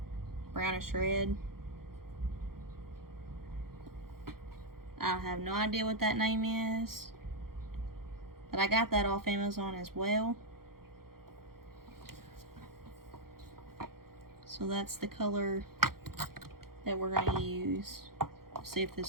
red. I have no idea what that name is, but I got that off Amazon as well. So that's the color that we're going to use. See if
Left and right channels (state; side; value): late; left; 0.93 ms